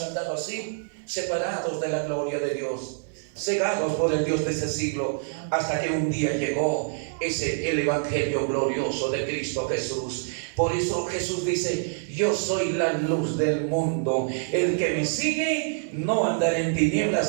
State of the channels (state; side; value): silent; left; 61 dB below the other